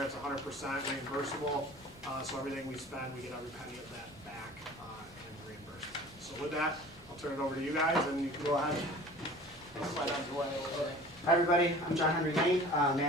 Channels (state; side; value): normal; both; correlation 0.44